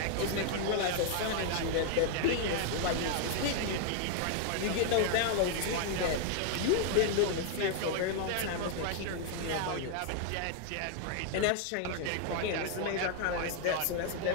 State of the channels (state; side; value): different; both; correlation 0.00